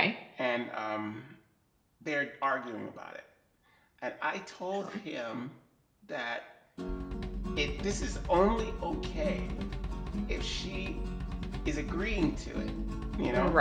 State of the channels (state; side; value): identical; both; correlation 1.00